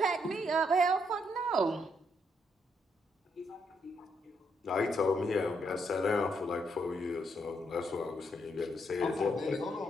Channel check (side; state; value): both; normal; correlation 0.76